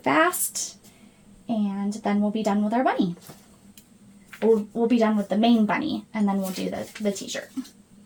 and then we'll be done with our bunny. We'll be done with the main bunny, and then we'll do the t-shirt.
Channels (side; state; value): both; identical; correlation 1.00